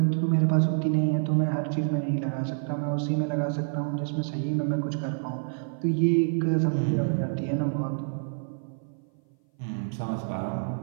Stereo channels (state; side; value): silent; left; 57 dB below the other